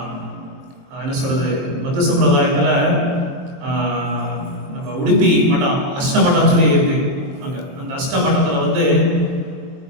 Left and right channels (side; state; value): left; late; 23 ms